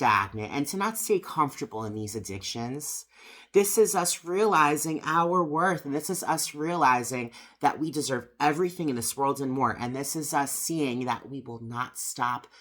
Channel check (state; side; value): identical; both; correlation 1.00